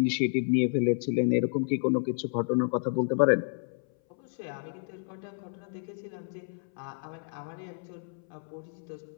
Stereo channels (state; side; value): silent; right; 58 dB below the other